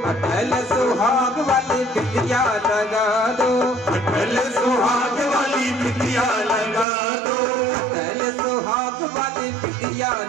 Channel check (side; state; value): left; drops out; at 6.9 s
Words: अटल सुहाग वाली बिटिया लगा दो, अटल सुहाग वाली बिटिया लगा दो, अटल सुहाग वाली बिटिया